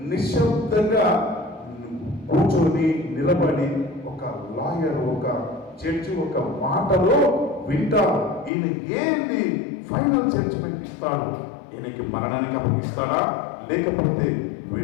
నిశ్శబ్దంగా కూర్చొని నిలబడి ఒక లాయర్, ఒక జడ్జి ఒక మాటలో వింటారు. ఈయన ఏంది ఫైనల్ జడ్జిమెంట్ ఇస్తాడు, ఈయనకి మరణానికి అప్పగిస్తాడా లేకపోతే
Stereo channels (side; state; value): right; drops out; at 8.5 s